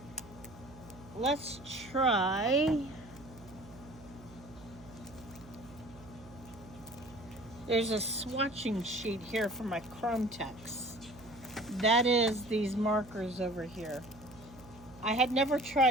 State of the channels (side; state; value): right; noise; hum, 20 dB below the sound